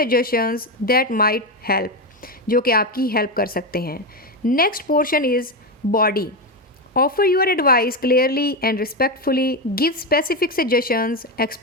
that might help, जो कि आपकी help कर सकते हैं. Next portion is body. Offer your advice clearly and respectfully. Give specific suggestions.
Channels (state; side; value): normal; both; correlation 0.12